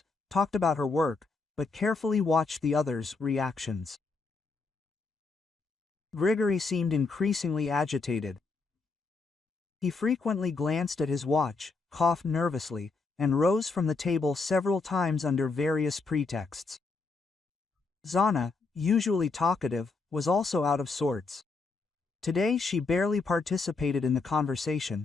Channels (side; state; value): right; quieter; 4.1 dB